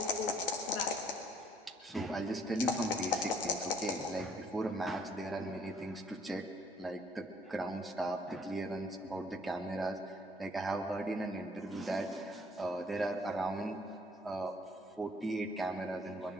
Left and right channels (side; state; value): both; normal; correlation 0.62